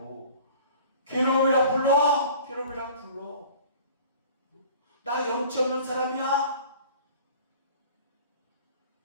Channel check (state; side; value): inverted; both; correlation -0.46